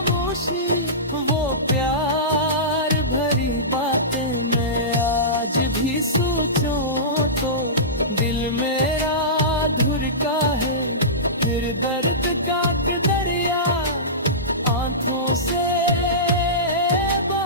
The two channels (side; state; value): both; normal; correlation -0.20